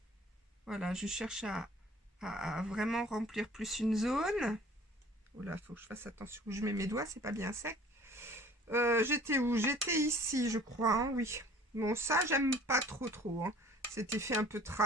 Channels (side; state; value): both; normal; correlation 0.49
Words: Voilà, je cherche à vraiment remplir plus une zone. Oh là, faut que je fasse attention où je mets mes doigts, c'est pas bien sec. J'étais où? J'étais ici, je crois, hein, oui. Bon, ça, j'aime pas trop. Hein. Cet effet un peu